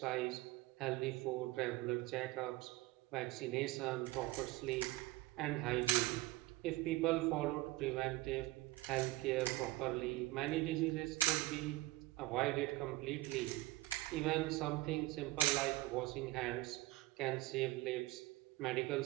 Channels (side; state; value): left; quieter; 19.3 dB